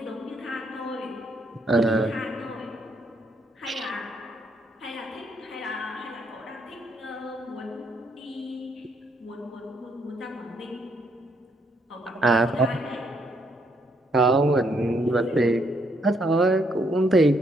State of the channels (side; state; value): both; normal; correlation 0.72